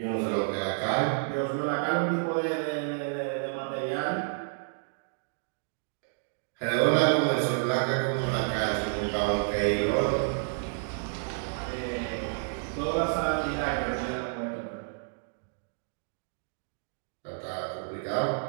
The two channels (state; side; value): silent; left; digital silence